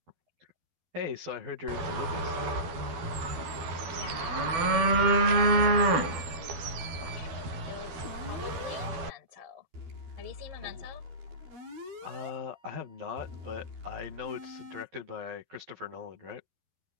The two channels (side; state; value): left; late; 12 ms